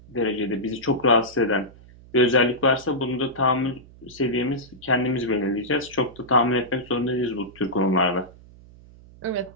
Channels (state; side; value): noise; right; hum, 22 dB below the sound